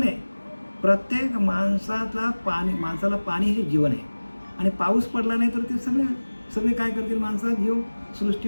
आहे. प्रत्येक माणसाला पाणी हे जीवन आहे. आणि पाऊस पडला नाही तर ते सगळे काय करतील? माणसाचा जीव,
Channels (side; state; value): both; inverted; correlation -1.00